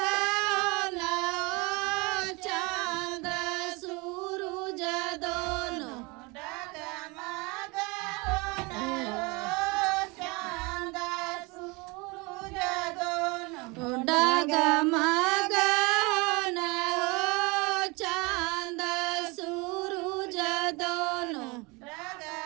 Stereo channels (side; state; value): left; quieter; 26.7 dB